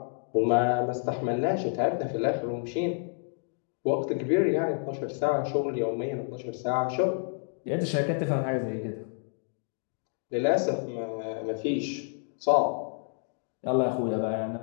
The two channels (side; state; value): right; silent; 58 dB below the other